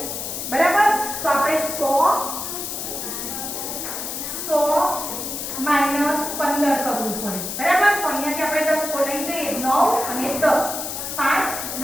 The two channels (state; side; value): noise; left; hiss, 5 dB below the sound